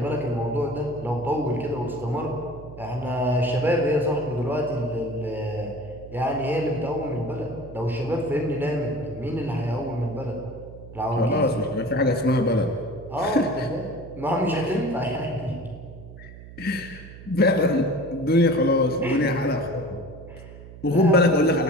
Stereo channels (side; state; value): right; noise; hum, 16 dB below the sound